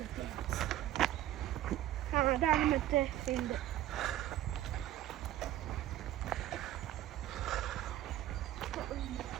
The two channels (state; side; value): quieter; left; 13.5 dB